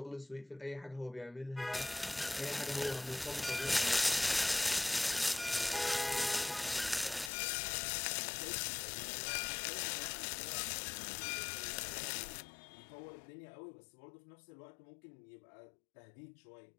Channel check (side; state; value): right; drops out; at 7.3 s